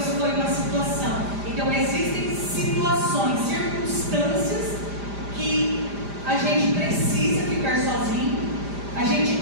foi uma situação. Então existem situações, circunstâncias que a gente precisa ficar sozinho, a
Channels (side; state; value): left; late; 5.0 ms